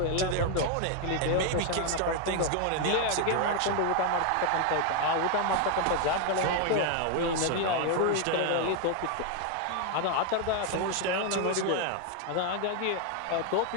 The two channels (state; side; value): different; both; correlation 0.01